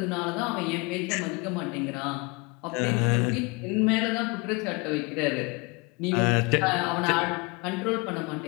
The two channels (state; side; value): quieter; right; 27.9 dB